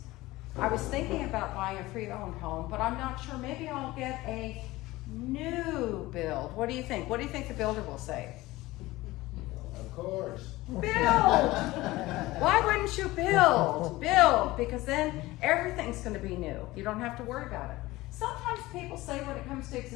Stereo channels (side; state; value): right; quieter; 18.9 dB